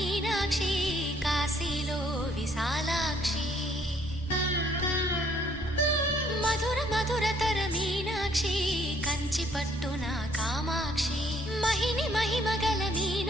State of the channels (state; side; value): normal; both; correlation 0.64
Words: కాశీలో విశాలాక్షి మధుర మధురతర మీనాక్షి కంచి పట్టున కామాక్షి మహిని మహిమగల